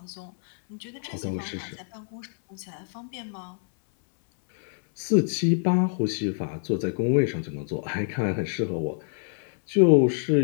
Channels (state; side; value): silent; right; 61 dB below the other